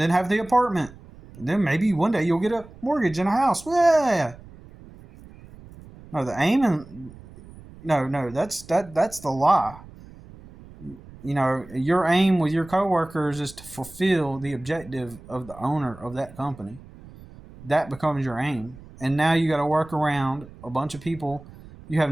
then have the apartment. And then maybe one day you'll get a mortgage and a house. Yeah. No, the aim in no, that's the lie. You know, your aim with your coworkers is to fulfill the objective of the owner of that company. That becomes your aim. And now you got to work around a bunch of people you have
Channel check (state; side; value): noise; right; rumble, 19 dB below the sound